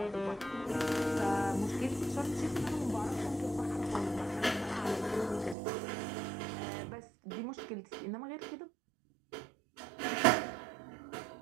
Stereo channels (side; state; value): left; drops out; at 5.6 s